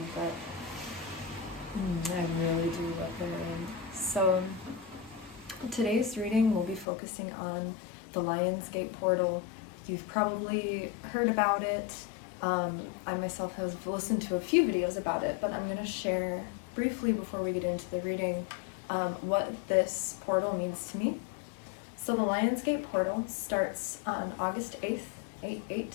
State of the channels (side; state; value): right; drops out; at 6.9 s